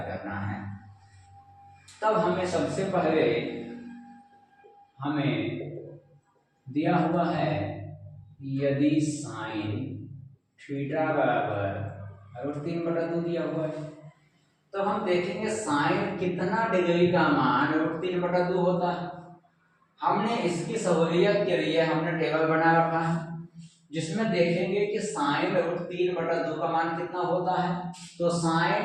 करना है। तब हमें सबसे पहले हमें दिया हुआ है, यदि साइन थीटा बराबर 3/2 दिया हुआ है तो हम देखेंगे साइन कितना डिग्री का मान 3/2 होता है। हमने इसकी सहूलियत के लिए हमने टेबल बना रखा है, जिसमें देखेंगे कि साइन 3/2 का मान कितना होता है। तो साइन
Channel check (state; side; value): identical; both; correlation 1.00